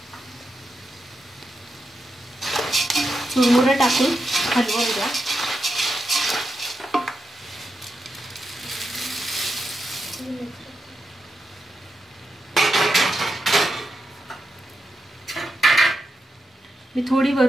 चुरमुरे टाकून हलवून द्या। मी थोडी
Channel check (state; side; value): normal; both; correlation 0.86